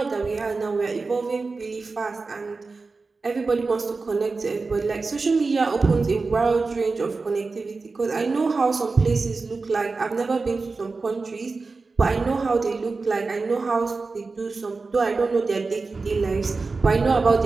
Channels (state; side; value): quieter; left; 4.0 dB